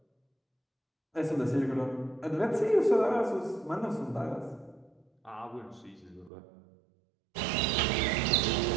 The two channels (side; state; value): left; drops out; at 6.3 s